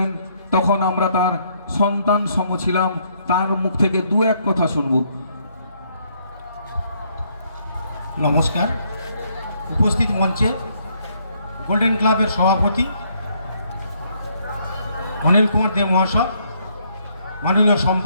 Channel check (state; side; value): inverted; both; correlation -0.70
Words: তখন আমরা তার সন্তান সম ছিলাম। তার মুখ থেকে দু এক কথা শুনব। নমস্কার। উপস্থিত মঞ্চে গোল্ডেন ক্লাবের সভাপতি অনিল কুমার দে মহাশয়, মাননীয়